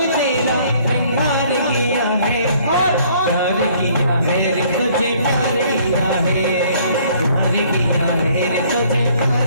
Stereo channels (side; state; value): both; inverted; correlation -0.60